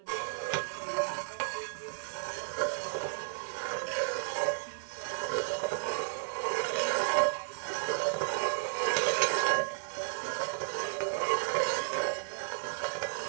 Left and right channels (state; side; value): silent; left; 56 dB below the other